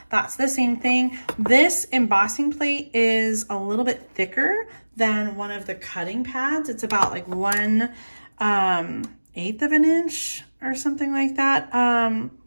that's the same thing. This embossing plate is a little bit thicker than one of the cutting pads. It's about like 1/8 of an inch or something like that,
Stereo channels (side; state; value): both; inverted; correlation -1.00